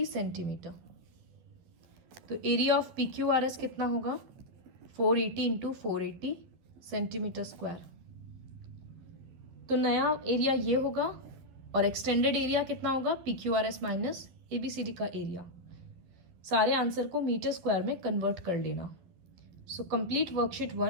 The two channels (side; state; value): left; late; 11 ms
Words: सेंटीमीटर। तो एरिया ऑफ PQRS कितना होगा 480 × 480 सेंटीमीटर स्क्वायर। तो नया एरिया ये होगा और एक्सटेंडेड एरिया कितना होगा PQRS माइनस ABCD का एरिया। सारे आंसर को मीटर स्क्वायर में कन्वर्ट कर लेना। So complete worksheet